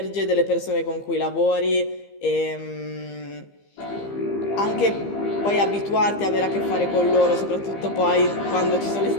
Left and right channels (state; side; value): late; right; 15 ms